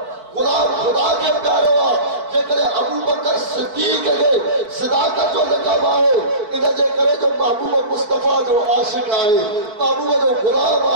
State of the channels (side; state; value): left; late; 4.5 ms